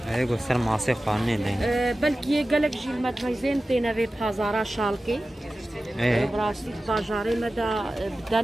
ايوه سر معصي قانوني دين بلكي قالك جي المدميزين تينا في بازارا شالكي براسي باجاري مدى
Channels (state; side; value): normal; both; correlation 0.95